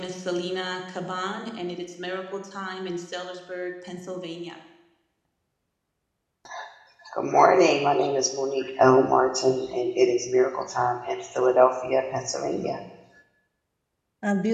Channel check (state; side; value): identical; both; correlation 1.00